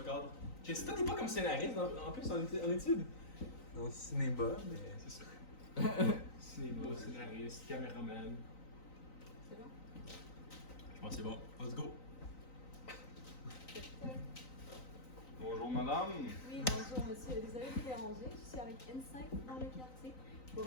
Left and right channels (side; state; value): right; late; 3.9 ms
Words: cadre. Si toi t'es pas comme scénariste en plus en études. Dans le cinéma, mais. C'est ça. Cinéma, scénariste, caméraman. C'est bon? Je pense que c'est bon. Let's go. Bonjour, madame. Oui, bonjour monsieur. Désolée de vous déranger. Je suis avec Insight dans le quartier